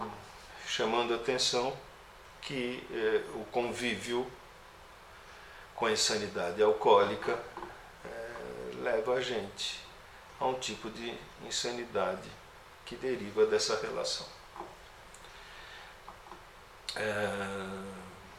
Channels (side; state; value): both; identical; correlation 1.00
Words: chamando a atenção que o convívio com a insanidade alcoólica leva a gente a um tipo de insanidade que deriva dessa relação.